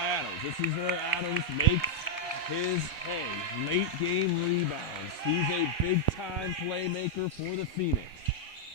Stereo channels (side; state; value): both; normal; correlation -0.04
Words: Adams. This is where Adams makes his hay. Late game rebounds. He's a big-time playmaker for the Phoenix.